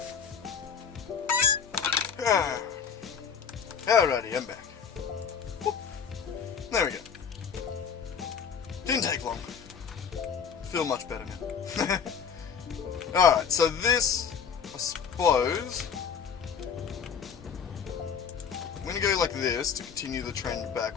Alrighty, I'm back. Whoop. There we go. Didn't take long. Feel much better now. Alright, so this, I suppose, I'm going to go like this to continue the trend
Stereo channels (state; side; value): quieter; right; 7.0 dB